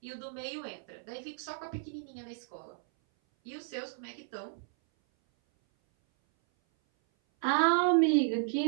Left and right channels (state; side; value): silent; left; 56 dB below the other